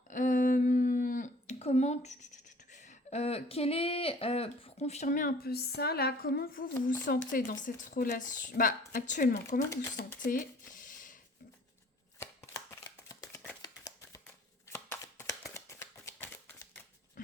quel est, pour confirmer un peu ça, là, comment vous vous sentez dans cette relation? Bah, actuellement, comment vous vous sentez?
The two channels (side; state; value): both; normal; correlation 0.52